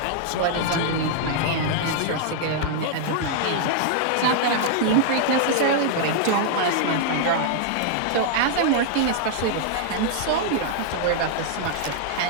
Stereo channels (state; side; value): different; both; correlation -0.01